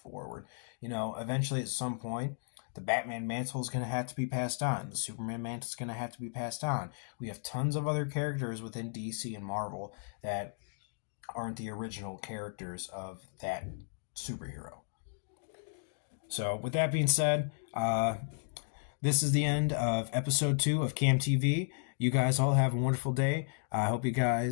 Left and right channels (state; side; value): silent; right; digital silence